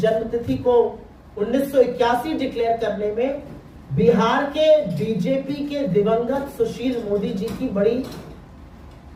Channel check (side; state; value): both; identical; correlation 1.00